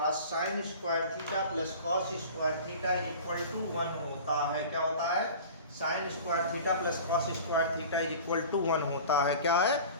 sine square theta plus cos square theta is equal to 1 होता है। क्या होता है, sine square theta plus cos square theta is equal to 1 होता है। क्या है,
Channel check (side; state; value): both; inverted; correlation -0.39